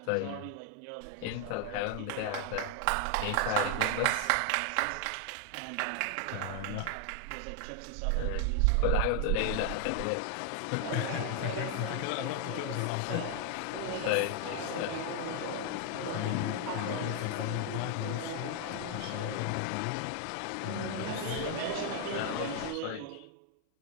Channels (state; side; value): different; both; correlation 0.00